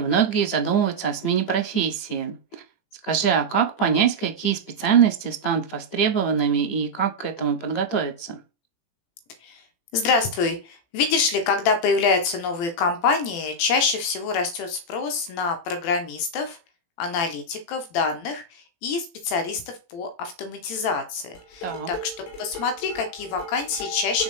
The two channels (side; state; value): right; late; 18 ms